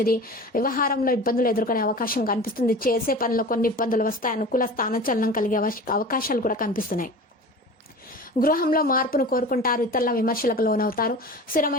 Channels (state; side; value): normal; both; correlation 0.36